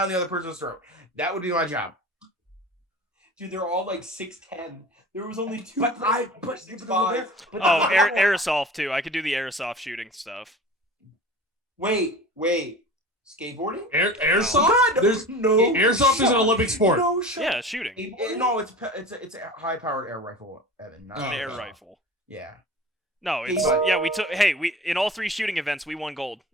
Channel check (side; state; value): both; normal; correlation 0.36